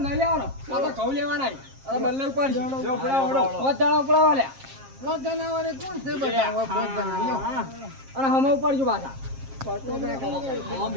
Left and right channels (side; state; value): left; late; 7.5 ms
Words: નહીં લેવાનો. આ તો ઘઉં લેવાના. આ બલ્લાઈ ઉપાડશે. જો ઉપડાવો. પોત જણા ઉપડાવો લ્યા. અને હમે ઉપાડજો પાછા.